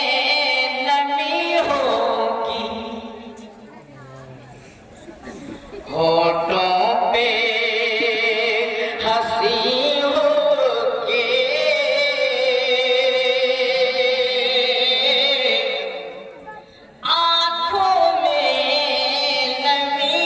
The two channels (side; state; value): both; identical; correlation 1.00